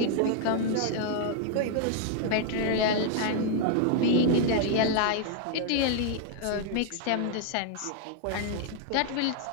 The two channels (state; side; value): different; both; correlation 0.00